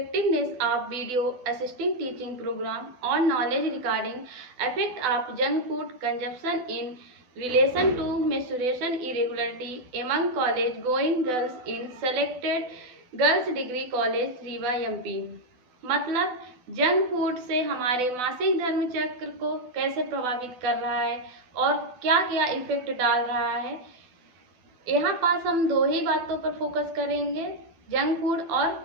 of video assisting teaching program on knowledge regarding effect of junk food consumption in relation to menstruation irregularity among college going girls in selected girls degree college Rewa MP. मतलब junk food से हमारे मासिक धर्म चक्र को कैसे प्रभावित कर रहा है और क्या क्या इफेक्ट डाल रहा है। यहाँ पास हम दो ही बातों पर फोकस करेंगे, जंक फूड और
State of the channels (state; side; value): late; left; 12 ms